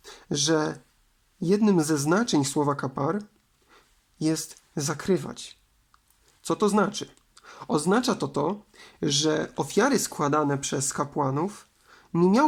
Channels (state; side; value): identical; both; correlation 1.00